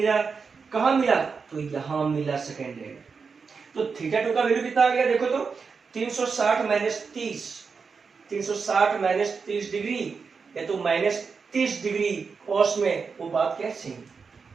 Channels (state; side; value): quieter; left; 5.3 dB